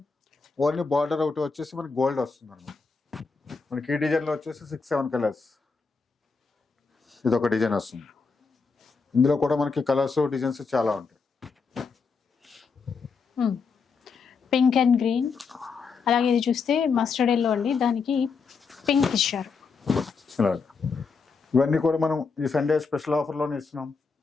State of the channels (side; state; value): right; quieter; 5.0 dB